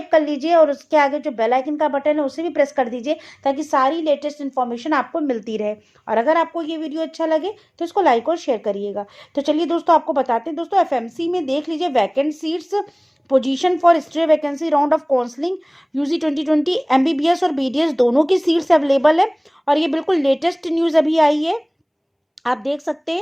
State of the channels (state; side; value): identical; both; correlation 1.00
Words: कर लीजिए और उसके आगे जो बेल आइकन का बटन है उसे भी प्रेस कर दीजिए, ताकि सारी लेटेस्ट इन्फॉर्मेशन आपको मिलती रहे। और अगर आपको ये वीडियो अच्छा लगे तो इसको लाइक और शेयर करिएगा। तो चलिए दोस्तों, आपको बताते हैं। दोस्तों, एफएमसी में देख लीजिए, vacant seats, position for stray vacancy round of counselling UG 2020, MBBS और बीडीएस दोनों की सीट्स अवेलेबल है। और ये बिल्कुल लेटेस्ट न्यूज़ अभी आई है, आप देख सकते